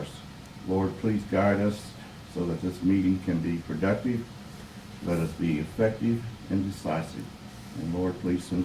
Lord, please guide us so that this meeting can be productive. Let us be effective and decisive. And Lord, please send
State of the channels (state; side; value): identical; both; correlation 1.00